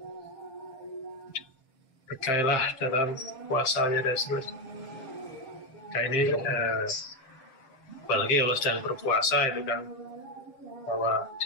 Berkailah dalam puasanya dan seterusnya. Nah ini apalagi kalau sedang berpuasa itu kan bahwa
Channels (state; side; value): late; right; 7.5 ms